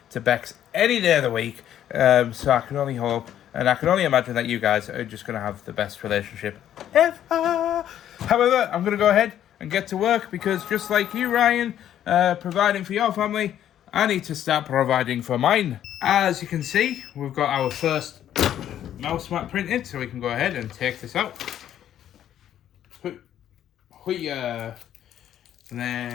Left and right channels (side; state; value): right; quieter; 10.9 dB